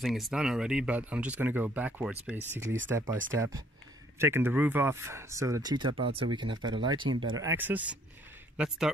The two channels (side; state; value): both; normal; correlation 0.64